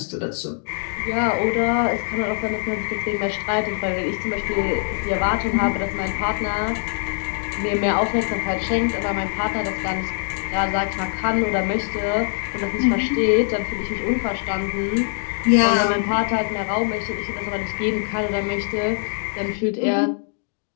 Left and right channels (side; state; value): right; silent; digital silence